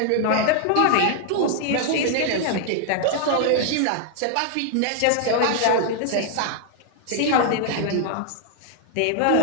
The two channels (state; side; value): different; both; correlation 0.00